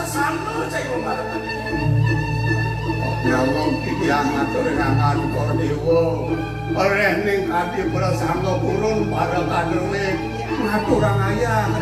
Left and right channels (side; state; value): both; identical; correlation 1.00